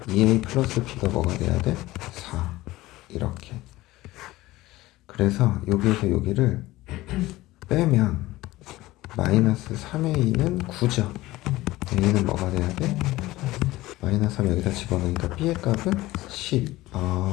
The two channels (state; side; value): quieter; right; 18.0 dB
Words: 2a 플러스 b가 뭐가 돼야 돼? 4 이렇게. 그래서 여기에서 여기를 빼면 마이너스 3a는 9죠. a는 뭐가 돼야 돼? 마이너스 3 여기다 집어넣으니까 b의 값은 10.